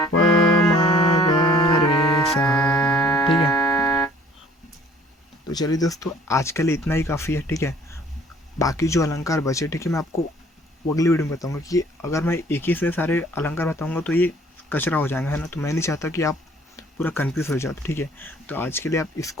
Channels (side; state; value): both; normal; correlation 0.54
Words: रे सा, ठीक है। तो चलिए दोस्तों आज के लिए इतना ही काफ़ी है, ठीक है। बाकी जो अलंकार बचे, ठीक है, मैं आपको अगली वीडियो में बताऊंगा, कि अगर मैं एक ही से सारे अलंकार बताऊंगा तो ये कचरा हो जाएगा, है ना। तो मैं नहीं चाहता कि आप पूरा कंफ्यूज हो जाओ, ठीक है। तो आज के लिए आप